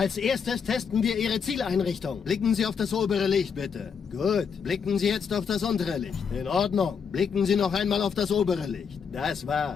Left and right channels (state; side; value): quieter; right; 6.5 dB